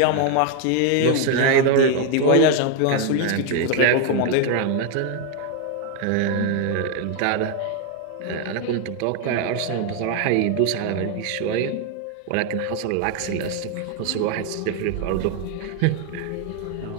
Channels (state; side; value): different; both; correlation 0.01